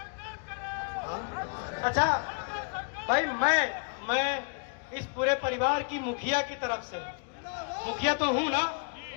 अच्छा भाई, मैं इस पूरे परिवार की मुखिया की तरफ से, मुखिया तो हूं ना,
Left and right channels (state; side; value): quieter; right; 39.6 dB